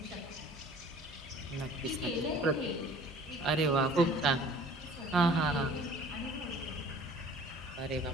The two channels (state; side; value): normal; both; correlation 0.49